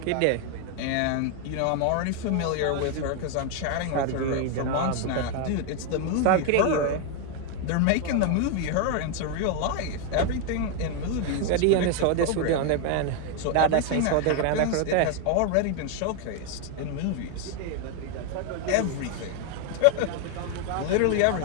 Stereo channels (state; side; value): different; both; correlation 0.01